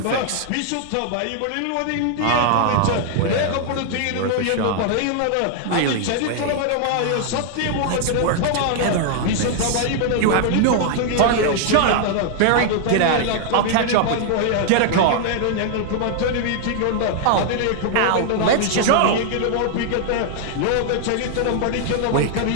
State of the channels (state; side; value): different; both; correlation 0.00